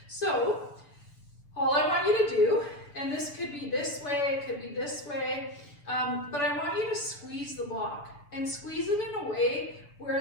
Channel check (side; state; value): right; late; 6.9 ms